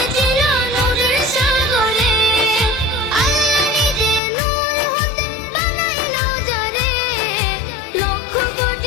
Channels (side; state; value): right; drops out; at 4.2 s